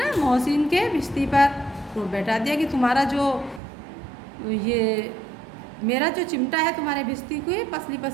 मोहसिन के भिश्ती पर रोब बैठा दिया कि तुम्हारा जो ये मेरा जो चिमटा है तुम्हारे भिश्ती को पसली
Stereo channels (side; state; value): left; drops out; at 3.6 s